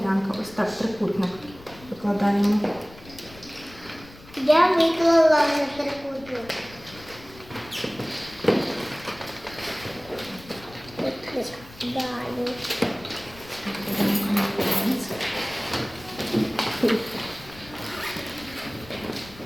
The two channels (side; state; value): left; noise; rumble, 20 dB below the sound